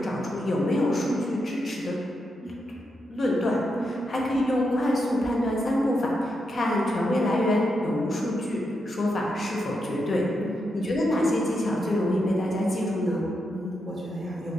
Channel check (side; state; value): both; normal; correlation 0.84